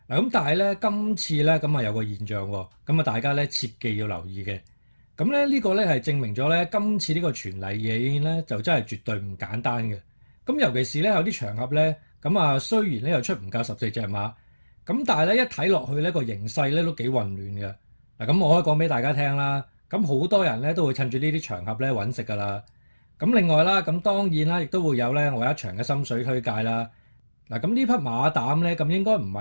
咁但係咧今次咧有個現象喎。大家咧切記要留意嘅。呢個咧係證明咗咧今次呢個全例夜宴咧就真係絕對唔簡單嘅。尤其是咧有啲場合咧雖然咧又出唔夠14隻馬，但係咧一睇落去咧個形勢咧都幾混亂嘅。我可以講俾大家聽啦。好多人咧都會趁住呢啲場合咧揾食㗎啦。另外啦，當然啦，亦都會有咧我一場嘅心水推介啦。呢匹馬膽咧應該唔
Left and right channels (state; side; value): inverted; both; correlation -1.00